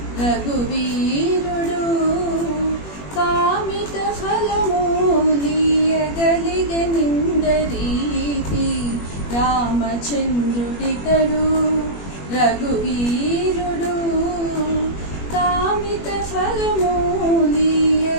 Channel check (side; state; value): right; late; 21 ms